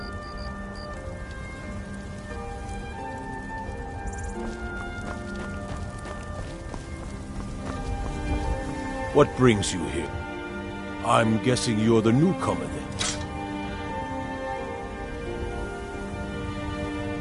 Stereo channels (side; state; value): both; identical; correlation 1.00